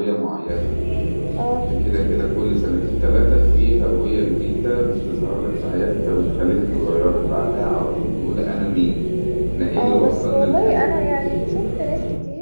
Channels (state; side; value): inverted; both; correlation -1.00